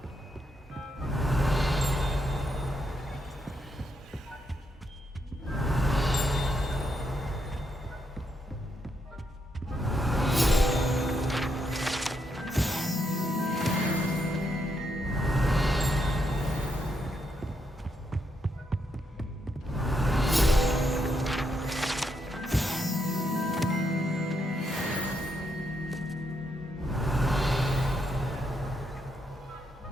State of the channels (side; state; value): both; normal; correlation 0.79